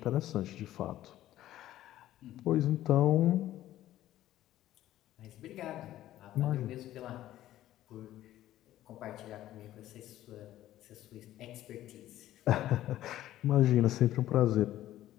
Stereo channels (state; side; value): quieter; right; 13.7 dB